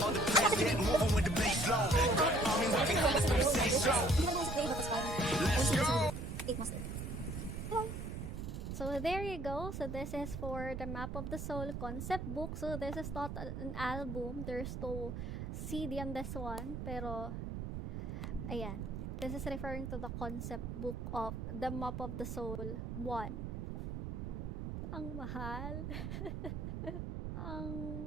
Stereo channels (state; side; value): noise; right; rumble, 5 dB below the sound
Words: On the place, get moving with the bass low. I mean, working hard, let's make it stay strong. Let's go. So there you go. So this is for the Map of the Soul concept book. So this is not an album. There's no CD on this one. Pero, ayan. This is referring to the concept book of the Map of the Soul 1. Ang mahal. Ang